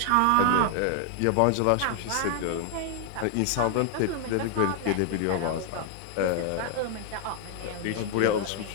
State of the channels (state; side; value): different; both; correlation 0.00